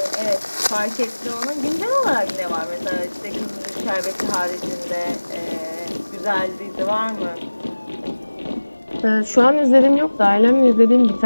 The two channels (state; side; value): inverted; both; correlation -1.00